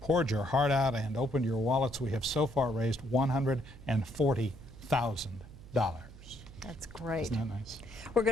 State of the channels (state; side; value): noise; right; hum, 18 dB below the sound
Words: poured your heart out and opened your wallets. We have so far raised $140,000. That's great. Isn't that nice? We're